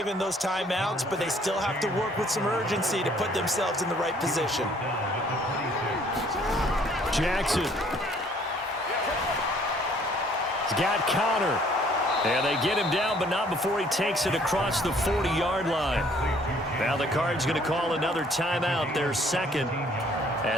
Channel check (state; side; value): normal; both; correlation 0.60